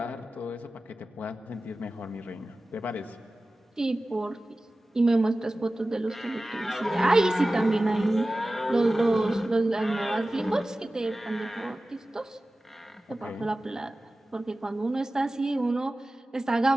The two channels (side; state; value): both; normal; correlation 0.96